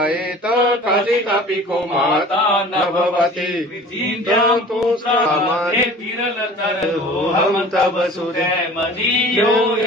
कथितपि को माता न भवति तु सामान्य हम तव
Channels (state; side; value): normal; both; correlation 0.44